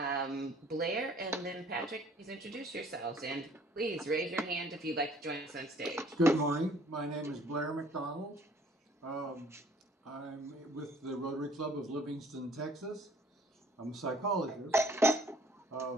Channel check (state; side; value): normal; both; correlation 0.57